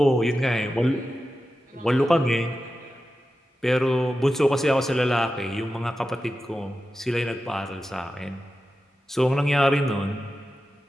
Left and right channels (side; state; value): both; normal; correlation 0.92